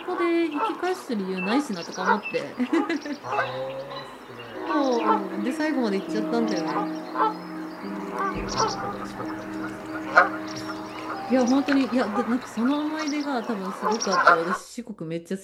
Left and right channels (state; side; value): identical; both; correlation 1.00